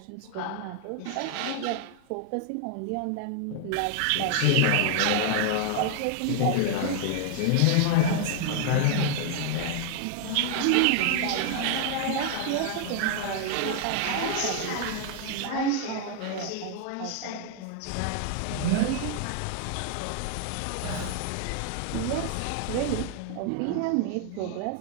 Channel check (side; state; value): both; different; correlation 0.00